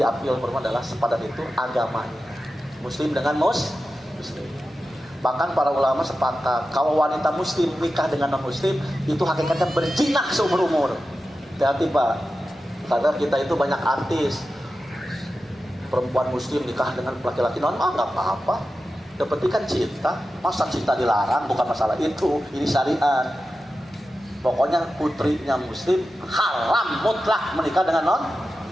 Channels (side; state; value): both; normal; correlation 0.92